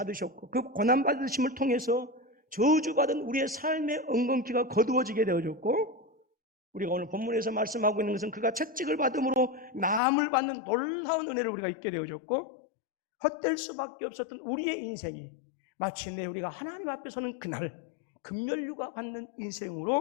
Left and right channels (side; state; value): right; drops out; at 10.0 s